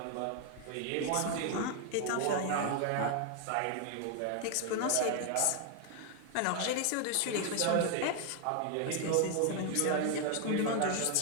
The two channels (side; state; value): both; different; correlation 0.01